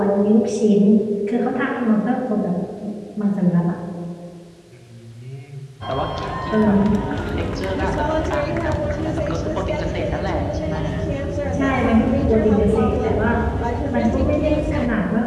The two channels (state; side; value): identical; both; correlation 1.00